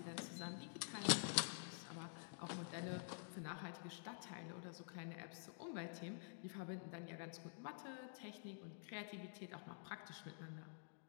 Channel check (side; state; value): right; silent; digital silence